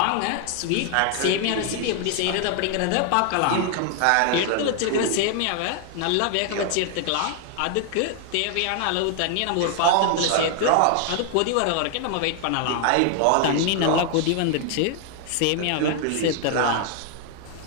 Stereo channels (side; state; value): both; different; correlation 0.00